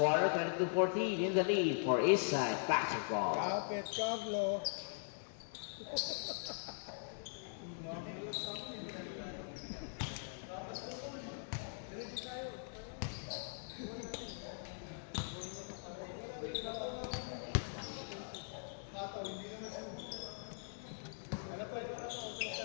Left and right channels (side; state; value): right; silent; digital silence